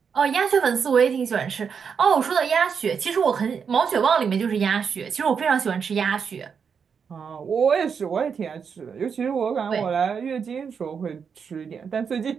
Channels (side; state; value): left; quieter; 6.5 dB